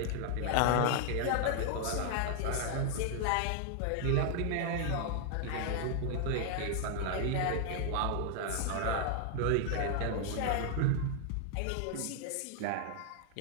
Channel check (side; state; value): both; different; correlation 0.00